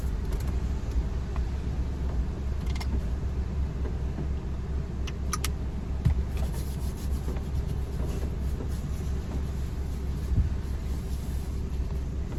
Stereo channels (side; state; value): both; identical; correlation 1.00